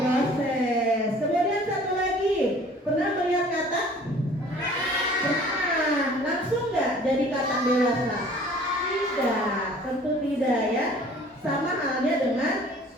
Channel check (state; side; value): normal; both; correlation 0.50